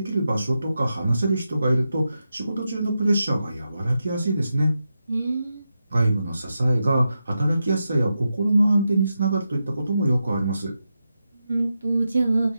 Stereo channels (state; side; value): inverted; both; correlation -0.88